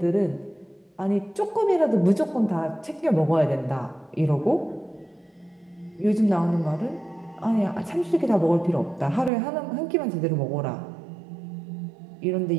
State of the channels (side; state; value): left; drops out; at 9.3 s